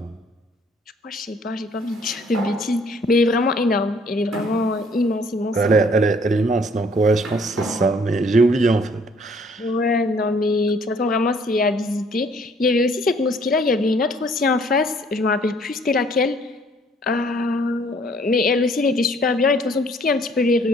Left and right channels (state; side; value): normal; both; correlation 0.60